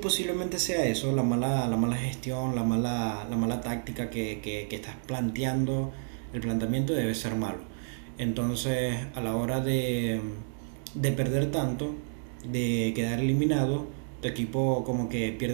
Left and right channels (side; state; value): left; silent; digital silence